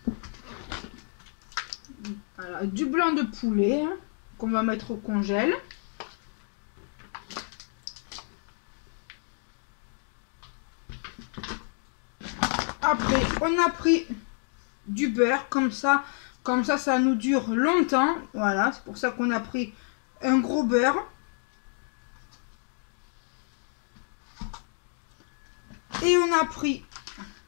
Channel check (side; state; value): right; silent; 55 dB below the other